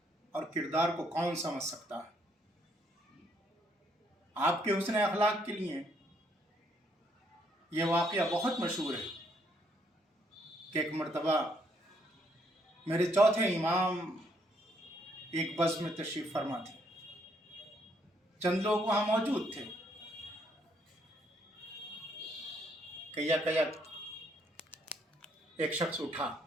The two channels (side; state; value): both; normal; correlation 0.70